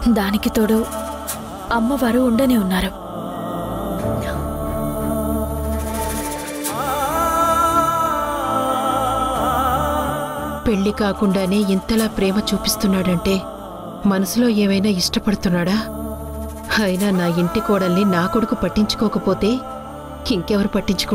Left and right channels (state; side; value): identical; both; correlation 1.00